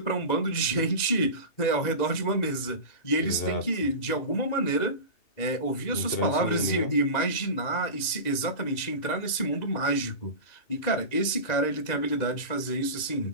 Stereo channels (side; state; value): right; late; 2.1 ms